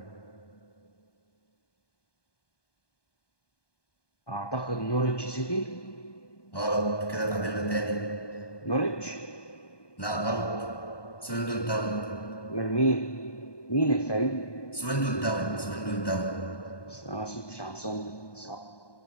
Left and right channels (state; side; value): late; right; 1.2 ms